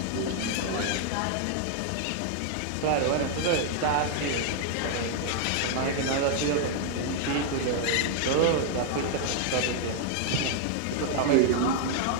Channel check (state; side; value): different; both; correlation 0.00